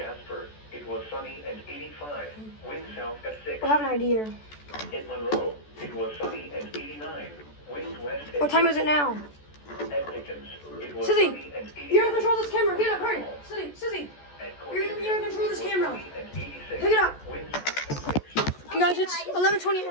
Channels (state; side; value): late; right; 14 ms